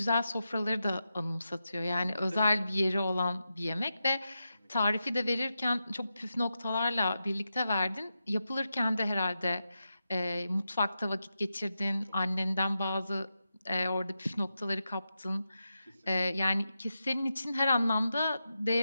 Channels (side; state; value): both; inverted; correlation -0.89